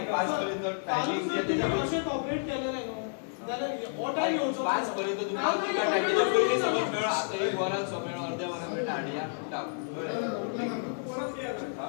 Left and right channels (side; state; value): right; silent; digital silence